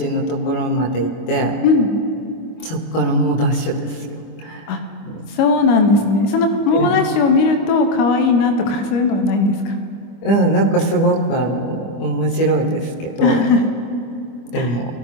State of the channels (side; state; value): right; late; 25 ms